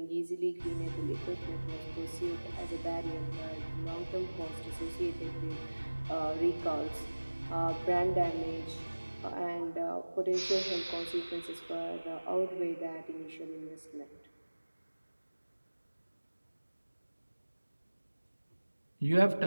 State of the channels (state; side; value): inverted; both; correlation -1.00